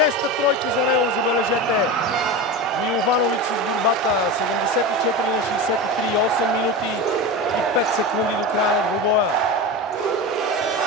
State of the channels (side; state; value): both; normal; correlation 0.24